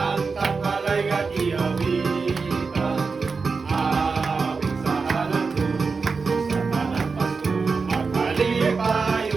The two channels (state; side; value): quieter; left; 4.7 dB